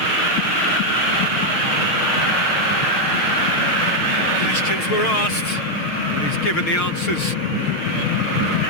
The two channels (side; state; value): right; late; 6.5 ms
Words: Questions were asked, but he's given the answers.